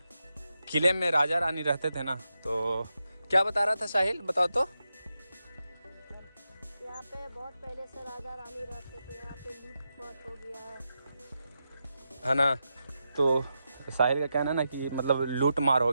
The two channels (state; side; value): inverted; both; correlation -0.88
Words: किले में राजा रानी रहते थे ना, तो क्या बता रहा था साहिल, बताओ तो। यहाँ पे बहुत पहले से राजा रानी रहते थे, यहाँ पे लूट मार हो गया है ना। तो साहिल का कहना है ना कि मतलब लूट मार हो